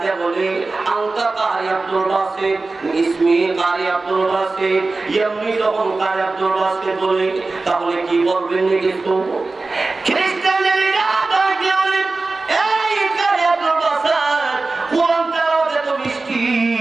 বলে আনতা কারি আব্দুল বাসিত ইসমি কারি আব্দুল বাসিত এমনি তখন কারি আব্দুল বাসিত বলে তাহলে কি বলবেন কিছু খ্রিস্টানের লিডার ডাকতে বলে এই কারি আব্দুল বাসিত কোরআন তেলাওয়াত এত মিষ্টি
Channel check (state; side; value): quieter; left; 3.6 dB